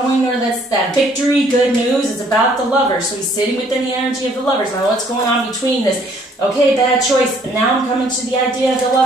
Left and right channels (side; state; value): both; normal; correlation 0.62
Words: or that's that victory, good news. It's about the Lovers. So he's sitting within the energy of the Lovers. Now what's going on between this? Okay, bad choice. And now I'm coming to the idea of the